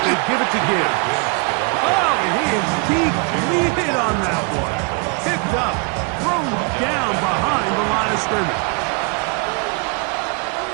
they give it to Gibbs. Oh, and he is deep-leaded on that one. Picked up, thrown down behind the line of scrimmage.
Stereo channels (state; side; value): quieter; left; 33.7 dB